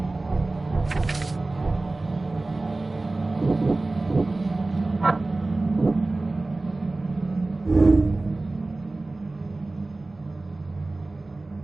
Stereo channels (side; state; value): left; quieter; 3.1 dB